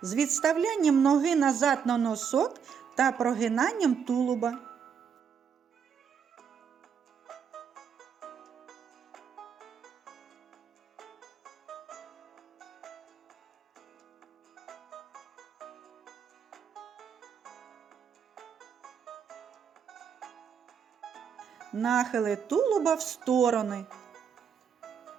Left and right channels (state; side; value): quieter; left; 7.1 dB